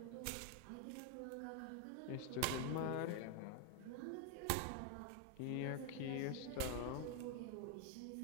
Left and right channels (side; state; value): both; different; correlation 0.01